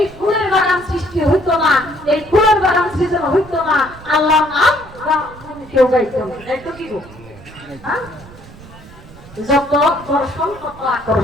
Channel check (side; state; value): right; noise; rumble, 20 dB below the sound